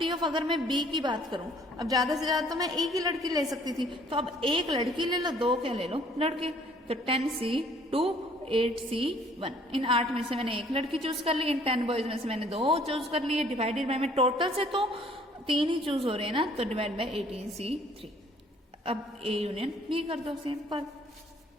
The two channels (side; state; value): both; normal; correlation 0.58